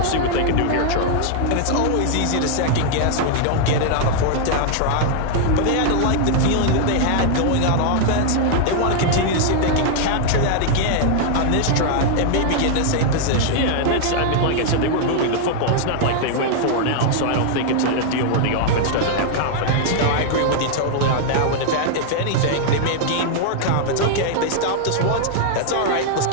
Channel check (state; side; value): different; both; correlation -0.01